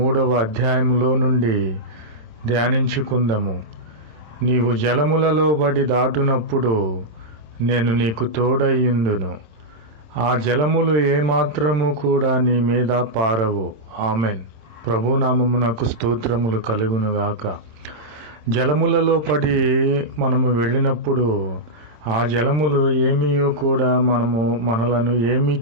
అధ్యాయములో నుండి ధ్యానించుకుందాము. నీవు జలములలో బడి దాటునప్పుడు నేను నీకు తోడయ్యుండును, ఆ జలములు ఏమాత్రము కూడా నీ మీద పారవు. ఆమెన్. ప్రభునామమునకు స్తోత్రములు కలుగునుగాక. జలములలో పడి మనము వెళ్ళినప్పుడు ఆ జలములు ఏమీయో కూడా మనలను ఏమీ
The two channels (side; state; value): left; late; 26 ms